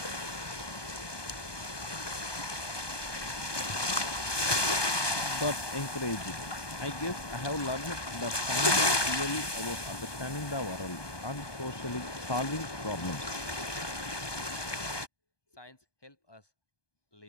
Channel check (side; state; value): right; late; 1.2 ms